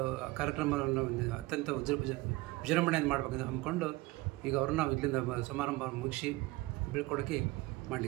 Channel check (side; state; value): left; quieter; 20.6 dB